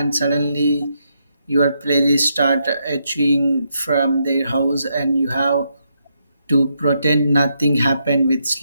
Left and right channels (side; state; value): both; inverted; correlation -0.79